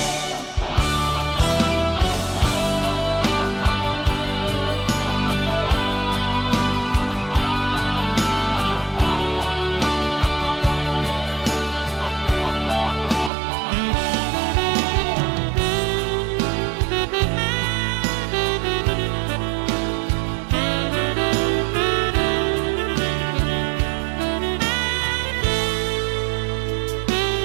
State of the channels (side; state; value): left; drops out; at 13.3 s